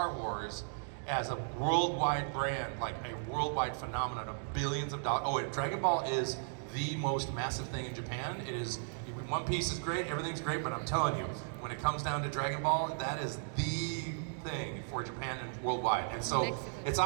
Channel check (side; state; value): left; silent; digital silence